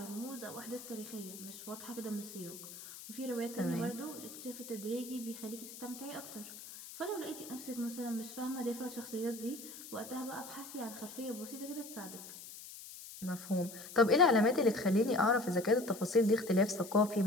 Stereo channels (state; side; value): noise; left; hiss, 13 dB below the sound